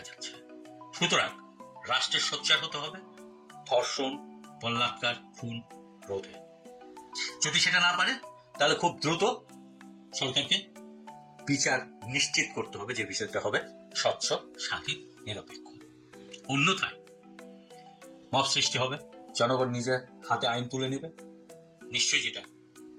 যাচ্ছে। সুতরাং রাষ্ট্রের সোচ্চার হতে হবে ধর্ষণ, বলাৎকার, খুন রোধে। যদি সেটা না পারে তাহলে খুব দ্রুত সরকারকে বিচার নিশ্চিত করতে হবে, যে বিচারটা হবে স্বচ্ছ, স্বাধীন, নিরপেক্ষ। অন্যথায় মব সৃষ্টি হবে, জনগণ নিজের হাতে আইন তুলে নেবে, নিশ্চয়ই যেটা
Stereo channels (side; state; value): both; identical; correlation 1.00